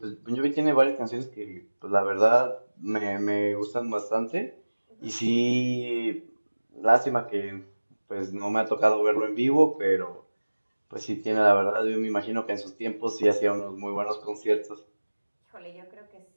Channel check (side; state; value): both; inverted; correlation -1.00